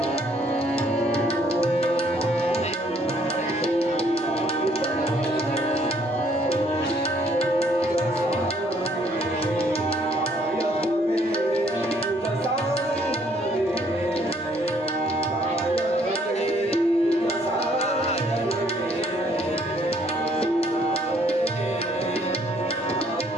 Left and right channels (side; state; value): both; normal; correlation 0.65